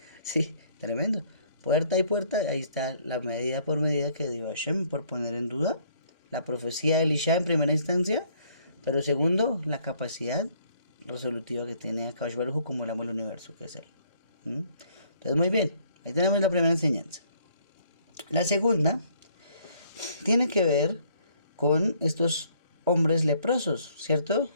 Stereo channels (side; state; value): both; inverted; correlation -0.64